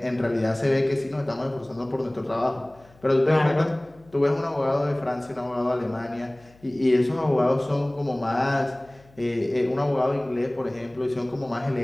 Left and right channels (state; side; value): noise; left; hum, 28 dB below the sound